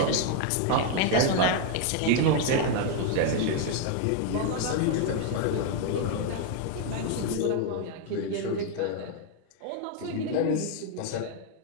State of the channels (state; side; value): different; both; correlation 0.00